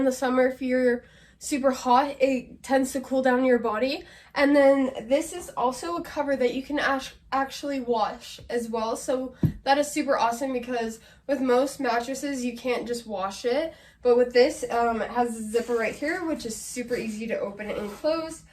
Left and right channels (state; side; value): identical; both; correlation 1.00